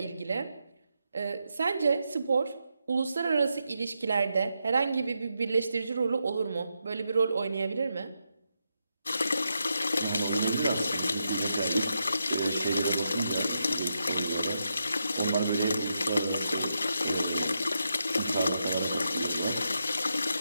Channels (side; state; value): both; inverted; correlation -0.84